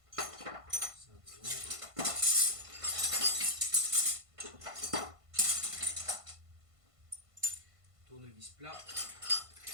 Ça devant. Tournevis plat.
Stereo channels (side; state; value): left; late; 1.5 ms